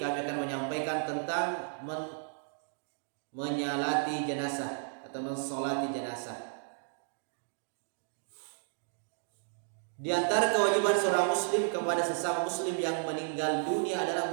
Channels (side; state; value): left; silent; digital silence